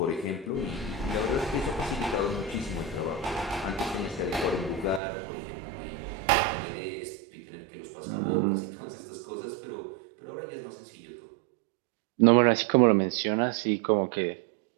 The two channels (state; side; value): drops out; left; at 5.0 s